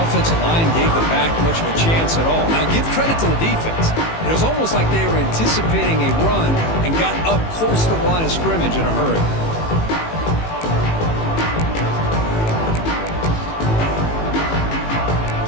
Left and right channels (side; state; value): right; late; 18 ms